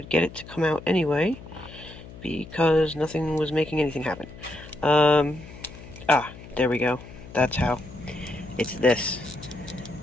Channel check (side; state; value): left; noise; hum, 16 dB below the sound